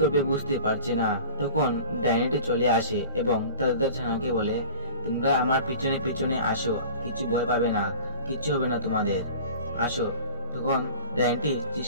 বুঝতে পারছে না। তখন ডাইনিটি চলে আসে এবং তাদের ছানাকে বলে, তোমরা আমার পিছনে পিছনে আসো, কিছু ভয় পাবে না, কিচ্ছু হবে না তোমাদের, আসো। তখন ডাইনিটি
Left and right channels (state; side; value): inverted; both; correlation -0.38